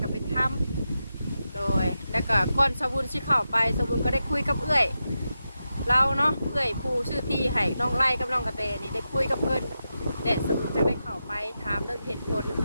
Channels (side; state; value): both; inverted; correlation -0.89